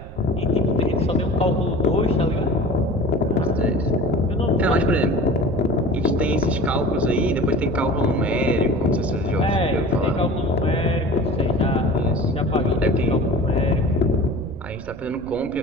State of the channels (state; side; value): noise; right; rumble, 15 dB below the sound